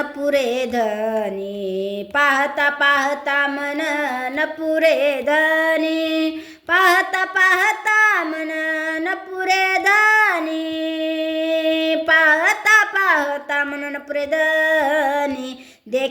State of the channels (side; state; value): both; identical; correlation 1.00